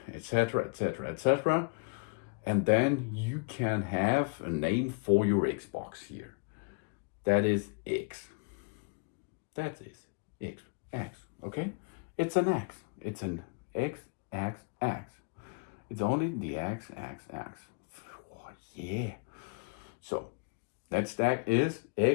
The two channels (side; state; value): right; quieter; 34.3 dB